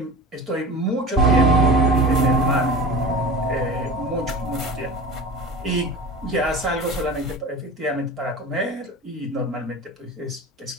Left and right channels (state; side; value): normal; both; correlation 0.32